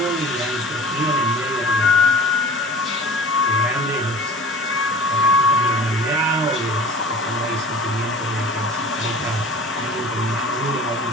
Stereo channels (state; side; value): normal; both; correlation 0.42